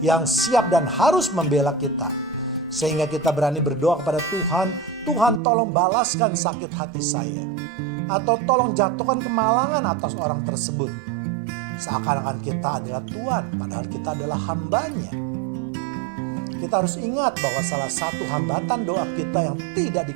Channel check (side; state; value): left; drops out; at 5.4 s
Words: yang siap dan harus membela kita. Sehingga kita berani berdoa kepada Tuhan, Tuhan tolong balaskan sakit hati saya. Atau tolong jatuhkan kemalangan atas orang tersebut. Seakan-akan kita adalah Tuhan, padahal kita adalah hambanya. Kita harus ingat bahwa salah satu hambatan doa kita yang tidak